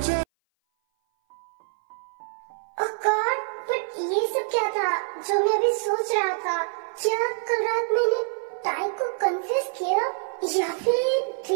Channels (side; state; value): left; silent; 58 dB below the other